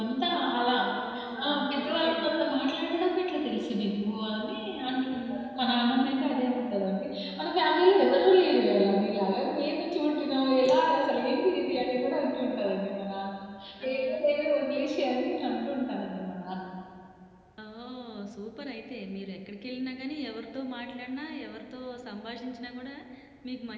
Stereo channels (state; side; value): identical; both; correlation 1.00